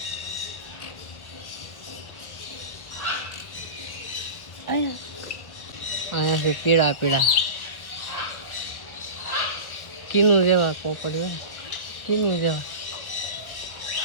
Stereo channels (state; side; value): late; right; 1.1 ms